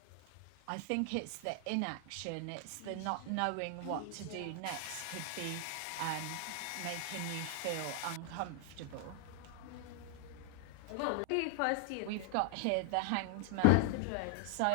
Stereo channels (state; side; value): different; both; correlation 0.00